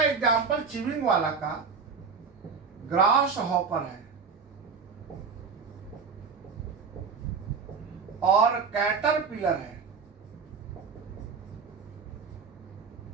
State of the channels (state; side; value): quieter; left; 5.5 dB